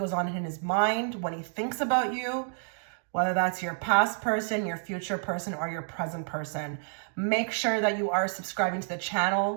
on in his mind when he thinks about you, whether that's your past person, your future person, or your present person. Make sure that you are subscribing to the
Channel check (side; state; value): left; silent; digital silence